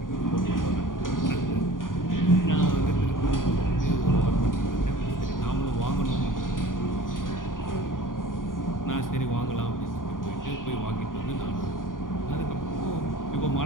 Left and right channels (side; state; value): right; late; 0.89 ms